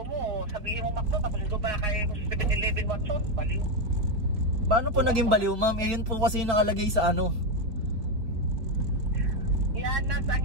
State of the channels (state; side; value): late; left; 4.7 ms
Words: Sabihin mo McDo, tapos ito pa kay 7-Eleven Watson. Baliw. Paano po naging baliw, ma'am? Eh, yun po kasi yung nakalagay sa Llanas ang